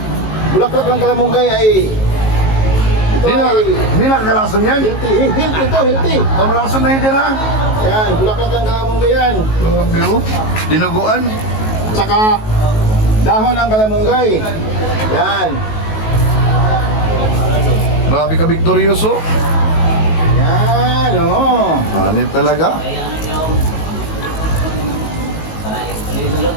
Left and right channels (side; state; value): right; late; 19 ms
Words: Bulaklak ng kalamunggay ay Hindi nakakalason yan. healthy. Kamalason na hindi na. Yan, bulaklak ng kalamunggay yan. Pero, dinuguan. Tsaka dahon ng kalamunggay. Yan. Grabe ka, Victorioso. Yan, oo. Hanip talaga.